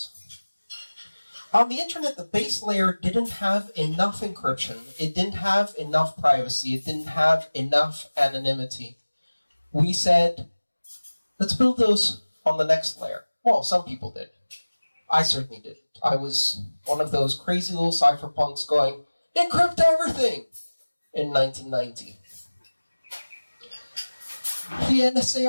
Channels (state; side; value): inverted; both; correlation -1.00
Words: On the internet, the base layer didn't have enough encryption. It didn't have enough privacy. It didn't have enough anonymity. We said, let's build those on the next layer. Well, some people did. I certainly didn't. I was one of those crazy little cypherpunks going, encrypt everything, in 1990. The NSA